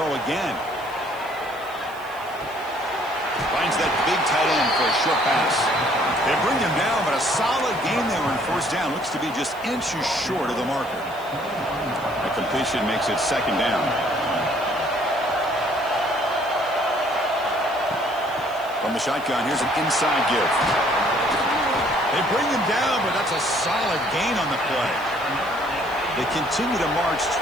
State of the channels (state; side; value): noise; right; hiss, 23 dB below the sound